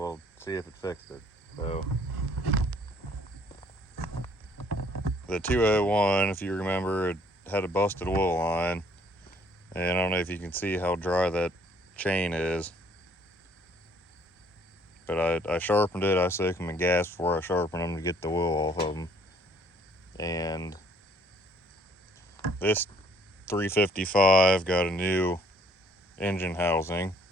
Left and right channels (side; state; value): both; normal; correlation 0.61